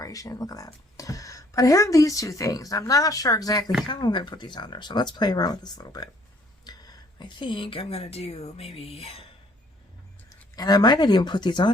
Look at that. But I have these two things, and I'm not sure exactly how I'm going to put these on there, so let's play around with this a little bit. I think I'm going to do maybe, and I might not even put these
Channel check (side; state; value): both; normal; correlation 0.61